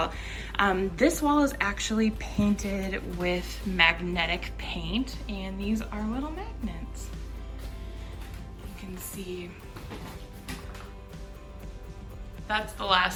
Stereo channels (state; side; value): identical; both; correlation 1.00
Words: This wall is actually painted with magnetic paint, and these are little magnets. You can see that's the